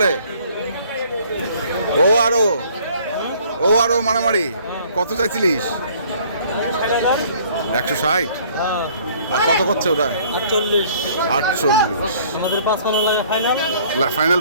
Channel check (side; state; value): both; inverted; correlation -0.56